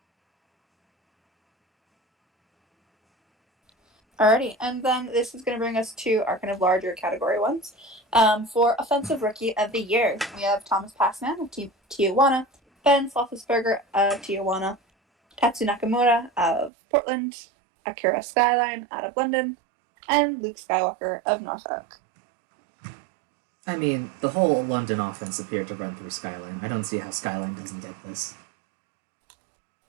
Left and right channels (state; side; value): drops out; left; at 16.7 s